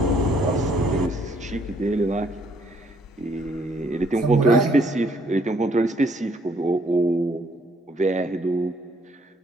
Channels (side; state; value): both; normal; correlation 0.67